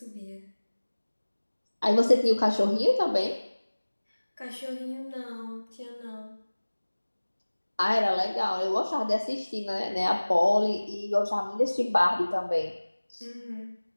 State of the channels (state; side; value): inverted; both; correlation -1.00